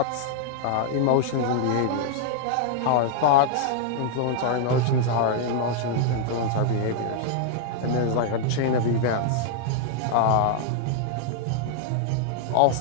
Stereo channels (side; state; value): both; different; correlation -0.01